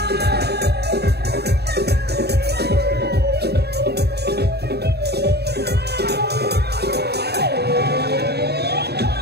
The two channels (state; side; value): late; left; 0.47 ms